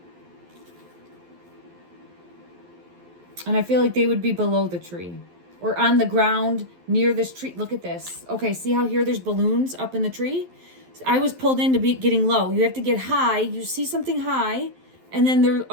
I feel like they would be below the tree. Or on the ground near this tree. Look at this. Okay, see how here there's balloons up in the tree? I was pulled into getting low. You have to get high. You see something high. And then they're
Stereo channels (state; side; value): late; left; 11 ms